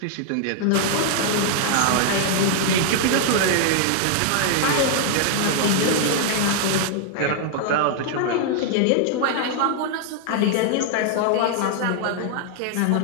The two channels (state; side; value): different; both; correlation -0.01